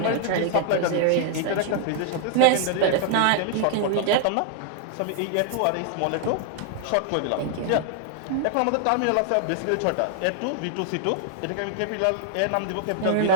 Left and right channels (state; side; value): different; both; correlation -0.01